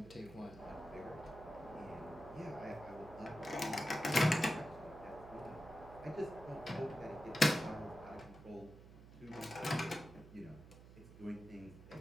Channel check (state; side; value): noise; right; hum, 17 dB below the sound